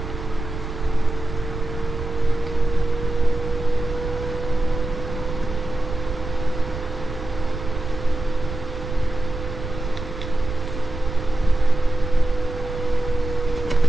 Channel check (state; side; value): noise; right; rumble, 7 dB below the sound